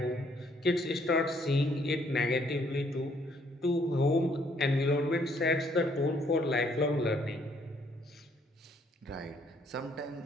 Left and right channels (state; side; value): normal; both; correlation 0.66